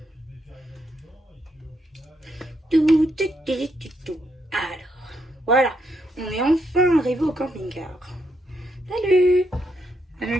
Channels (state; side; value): normal; both; correlation 0.78